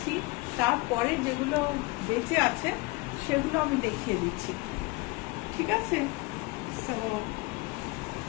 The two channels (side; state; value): right; quieter; 24.1 dB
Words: তারপরে যেগুলো বেঁচে আছে সেগুলো আমি দেখিয়ে দিচ্ছি, ঠিক আছে?